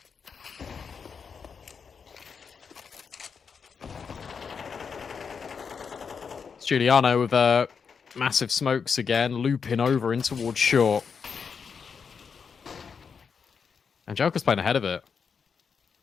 Giuliano with massive smokes again, looping over in towards short. And Joker's playing ahead of it.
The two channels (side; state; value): right; quieter; 6.1 dB